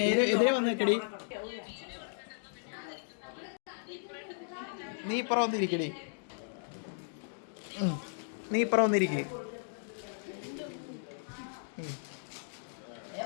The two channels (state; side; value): silent; right; digital silence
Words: എതിരെ വന്നേക്കടി. നീ ഇപ്പുറം വന്നിരിക്കടി. നീ ഇപ്പുറം വന്നിരിക്കേ.